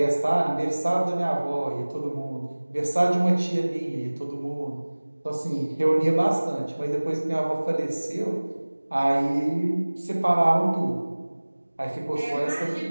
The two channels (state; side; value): inverted; both; correlation -1.00